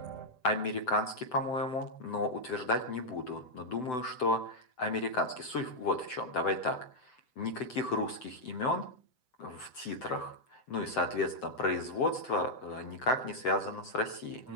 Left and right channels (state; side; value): late; right; 7.9 ms